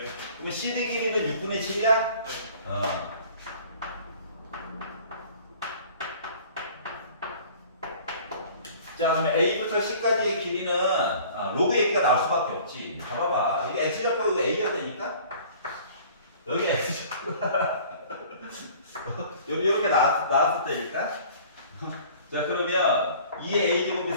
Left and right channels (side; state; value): both; inverted; correlation -0.49